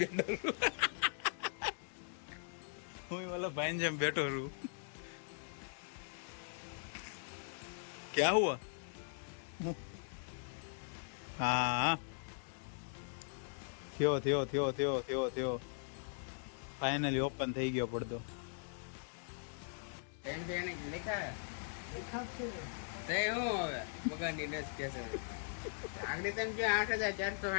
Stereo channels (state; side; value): silent; right; digital silence